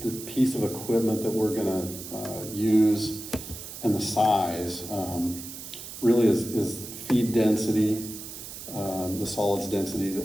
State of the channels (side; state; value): right; noise; hiss, 11 dB below the sound